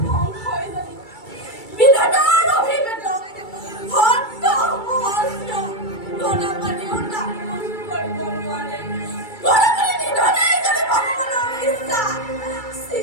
ধ্বংস হৈ যাব। বিধাতাৰ অভিবেদন ভক্ত মস্ত গণপানীও তাক কৰিব নোৱাৰে। গণপানী নিধনে যদি ভগৱানৰ ইচ্ছা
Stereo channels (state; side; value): late; right; 2.3 ms